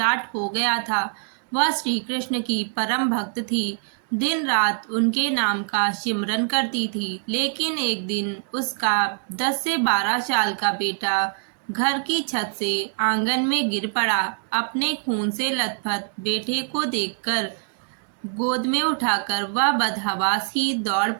हो गया था। वह श्री कृष्ण की परम भक्त थी। दिन रात उनके नाम का सिमरन करती थी। लेकिन एक दिन उसका 10 से 12 साल का बेटा घर की छत से आंगन में गिर पड़ा। अपने खून से लथपथ बेटे को देखकर गोद में उठाकर वह बदहवास ही दौड़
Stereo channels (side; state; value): left; silent; 59 dB below the other